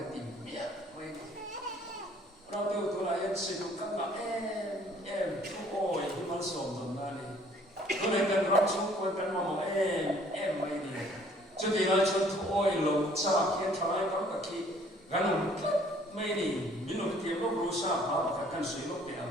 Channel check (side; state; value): both; normal; correlation 0.58